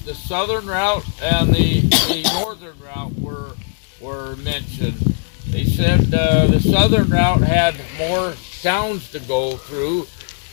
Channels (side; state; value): right; silent; digital silence